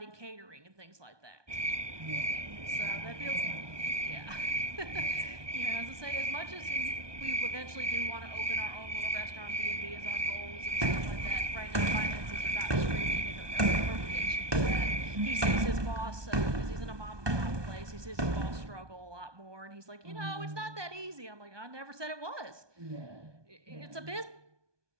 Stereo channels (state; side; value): late; left; 1.2 ms